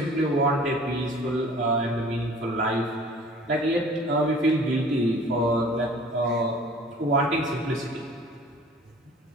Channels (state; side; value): normal; both; correlation 0.48